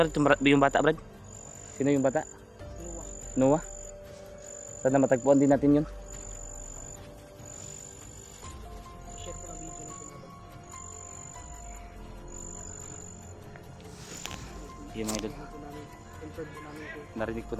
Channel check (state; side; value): identical; both; correlation 1.00